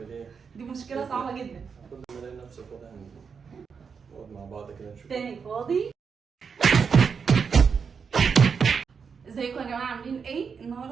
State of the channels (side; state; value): left; quieter; 6.0 dB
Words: ايه؟ دي مشكله صعبه جدا. كل ما الاقي نفسي فاضي نقعد مع بعض كده نشوف تاني فاضي. ازيكم يا جماعه عاملين ايه؟